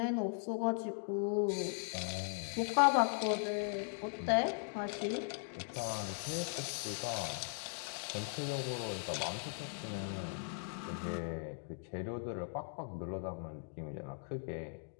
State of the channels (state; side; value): silent; right; digital silence